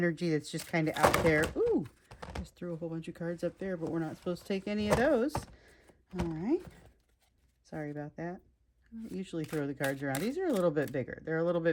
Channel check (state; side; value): identical; both; correlation 1.00